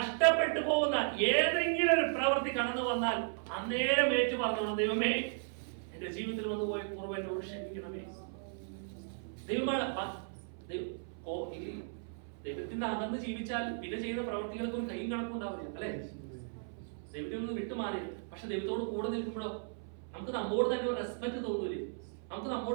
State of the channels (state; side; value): silent; left; 54 dB below the other